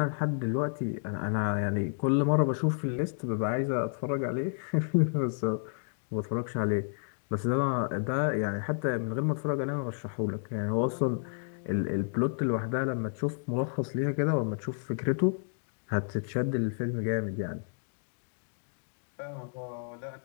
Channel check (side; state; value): right; silent; digital silence